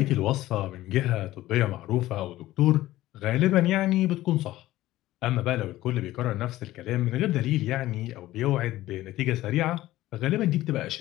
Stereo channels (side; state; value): right; quieter; 15.8 dB